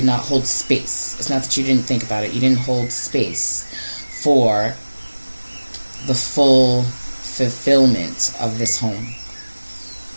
not hold space. It's not that you didn't think about it. You didn't hold space for the full fulfillment of this home.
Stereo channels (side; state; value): both; inverted; correlation -1.00